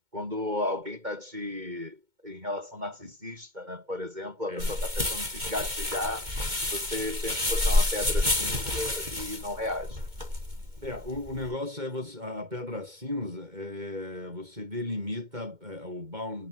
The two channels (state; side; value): late; left; 2.2 ms